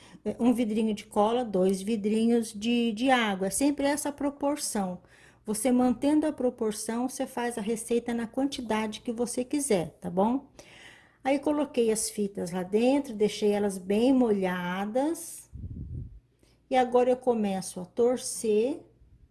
um vidrinho de cola, 2 vidrinhos de água. É sempre essa proporção. Você mantendo a proporção, você faz a receita na quantidade que você quiser, tá bom? Aí coloquei as fitas lá dentro, deixei elas bem molhadas. E agora eu começo a torcer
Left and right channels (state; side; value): identical; both; correlation 1.00